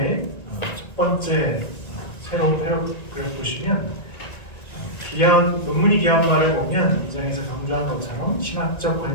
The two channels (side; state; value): right; late; 1.9 ms